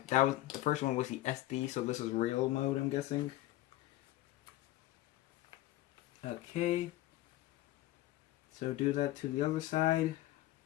that was, the first one was the SD, so this is real mode, I'm guessing. Okay. So do that to the other side.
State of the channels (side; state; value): right; quieter; 15.9 dB